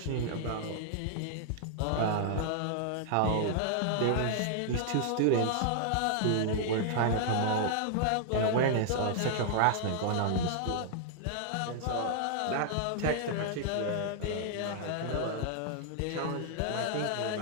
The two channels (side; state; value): both; different; correlation -0.01